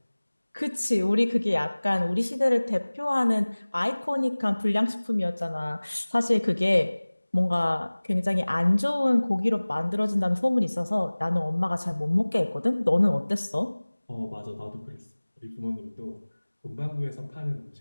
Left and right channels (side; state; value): both; inverted; correlation -1.00